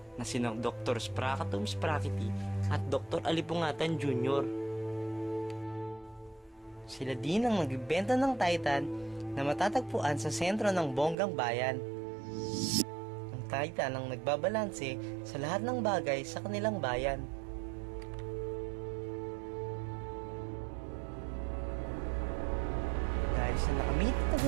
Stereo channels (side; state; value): left; drops out; at 11.2 s